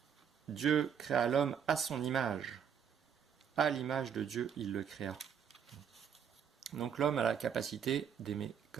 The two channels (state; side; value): quieter; left; 7.9 dB